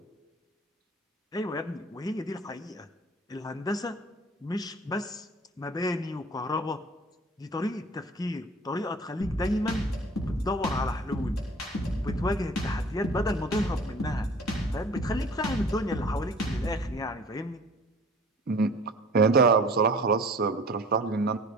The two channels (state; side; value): normal; both; correlation 0.47